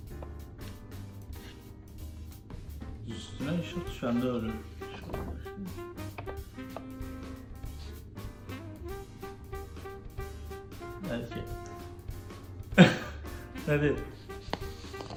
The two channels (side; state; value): both; identical; correlation 1.00